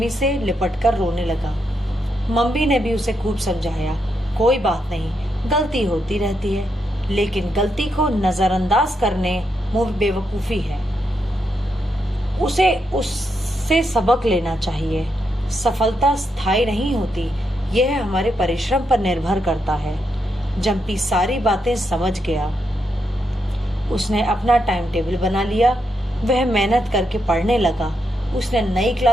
से लिपट कर रोने लगा। मम्मी ने भी उसे खूब समझाया, कोई बात नहीं, गलती होती रहती है, लेकिन गलती को नजरअंदाज करने मुंह बेवकूफी है। उसे उससे सबक लेना चाहिए। सफलता स्थायी नहीं होती, यह हमारे परिश्रम पर निर्भर करता है। जंपी सारी बातें समझ गया। उसने अपना टाइम टेबल बना लिया। वह मेहनत करके पढ़ने लगा। उसने नई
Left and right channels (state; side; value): normal; both; correlation 0.82